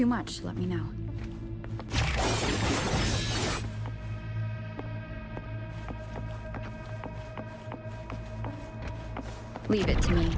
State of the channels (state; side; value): identical; both; correlation 1.00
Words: much, let me know. Leave it to me.